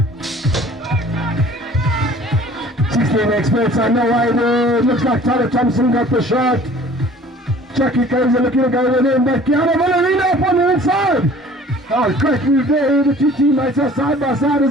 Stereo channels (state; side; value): normal; both; correlation 0.49